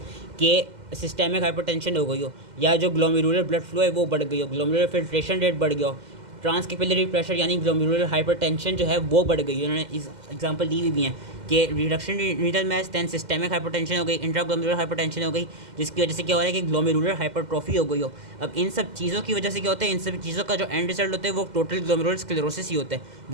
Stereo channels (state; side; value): late; left; 2.1 ms